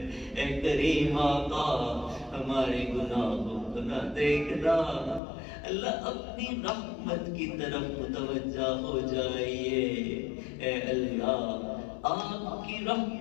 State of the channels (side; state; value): right; drops out; at 5.2 s